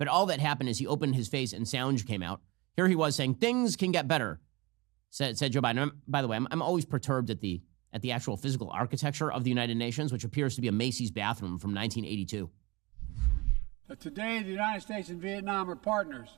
all that happened is he opened his face and sound came out. Here he was saying, things can get better, said Joe Biden. By the way, I'm always perturbed at the actual physical architecture of the United Nations, which appears to be a Macy's bathroom from 1982. But today, the United States and Vietnam are partners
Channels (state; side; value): quieter; left; 24.2 dB